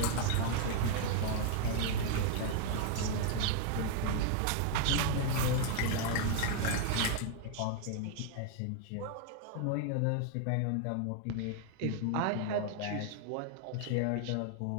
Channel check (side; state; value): both; different; correlation 0.00